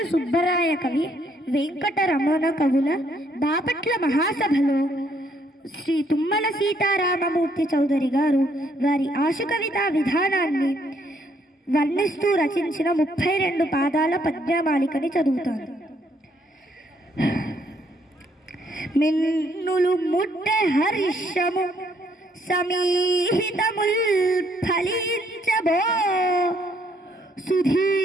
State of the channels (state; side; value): normal; both; correlation 0.69